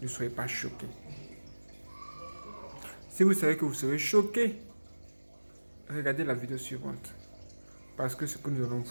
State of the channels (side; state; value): both; inverted; correlation -1.00